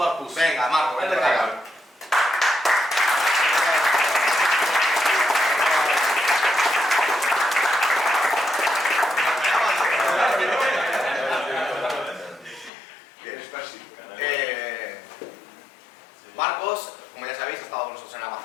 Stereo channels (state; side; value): drops out; right; at 12.7 s